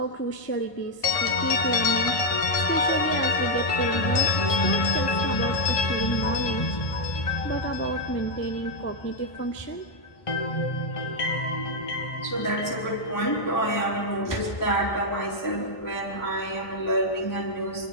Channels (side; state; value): right; late; 1.5 ms